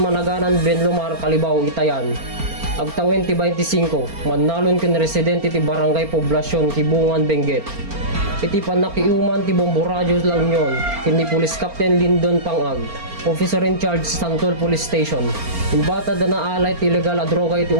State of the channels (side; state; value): left; late; 4.4 ms